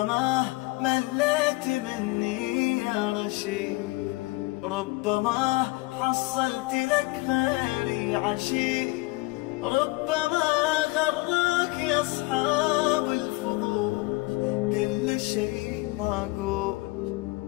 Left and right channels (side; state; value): right; quieter; 23.2 dB